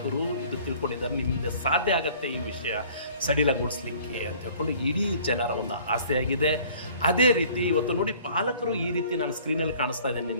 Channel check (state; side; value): inverted; both; correlation -0.53